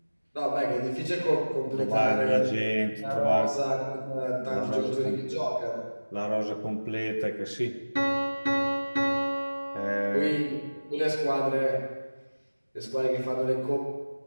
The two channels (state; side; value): inverted; both; correlation -1.00